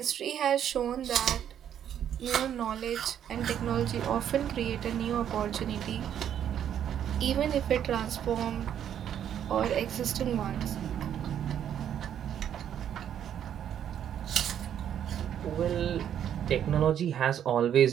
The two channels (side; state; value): left; quieter; 9.7 dB